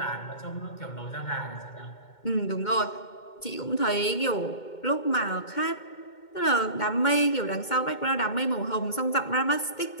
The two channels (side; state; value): right; late; 2.2 ms